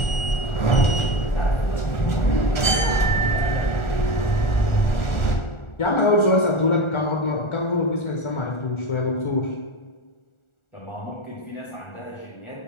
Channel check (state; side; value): late; right; 1.4 ms